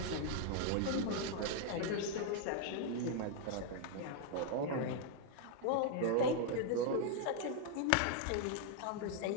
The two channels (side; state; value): both; different; correlation 0.00